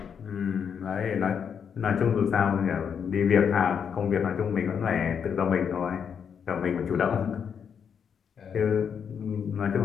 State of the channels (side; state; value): right; quieter; 7.3 dB